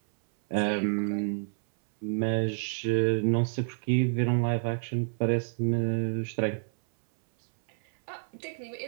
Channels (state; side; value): silent; left; 59 dB below the other